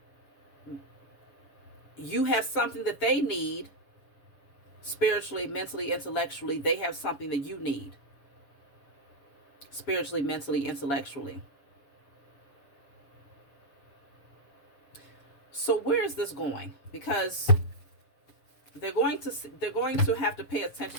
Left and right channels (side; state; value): right; late; 7.2 ms